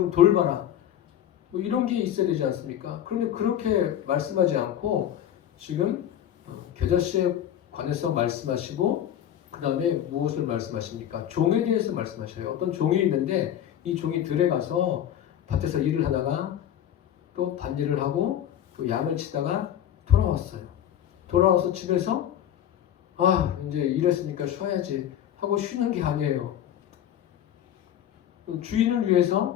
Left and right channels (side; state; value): right; quieter; 10.6 dB